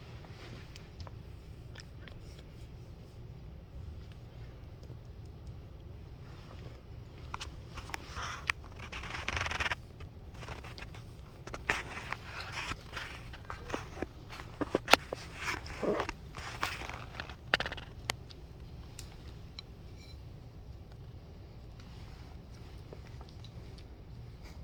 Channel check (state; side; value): identical; both; correlation 1.00